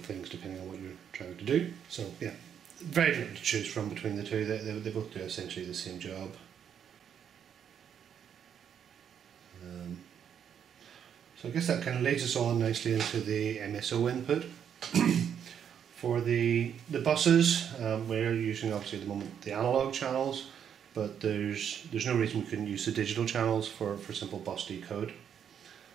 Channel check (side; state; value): left; quieter; 8.4 dB